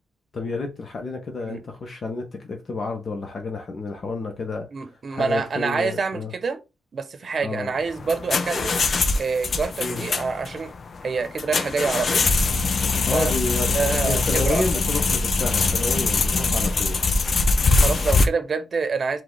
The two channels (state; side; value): normal; both; correlation 0.84